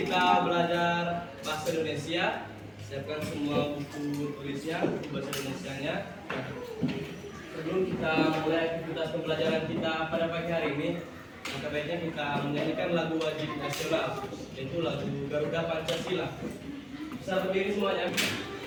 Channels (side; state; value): both; identical; correlation 1.00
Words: kita belajar bahasa Indonesia. Siapkan semua buku tulisnya, buku bahasa Indonesianya. Sebelum kita mulai aktivitas pembelajaran kita pada pagi hari ini, maka baiknya kita menyanyikan lagu wajib nasional, yaitu lagu Garuda Pancasila. Bisa berdiri semuanya.